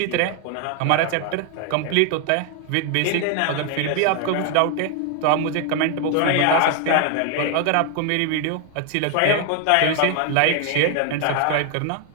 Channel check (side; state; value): both; different; correlation 0.00